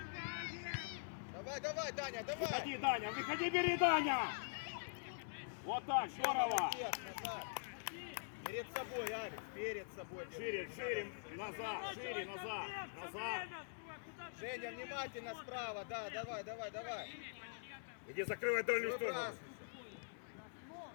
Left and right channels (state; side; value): silent; right; digital silence